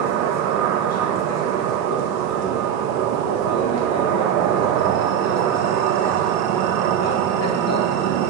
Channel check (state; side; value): quieter; left; 8.6 dB